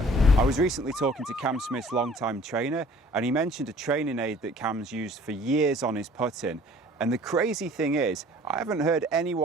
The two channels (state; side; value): normal; both; correlation 0.52